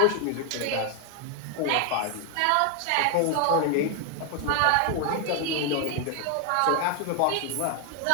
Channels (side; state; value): both; different; correlation 0.00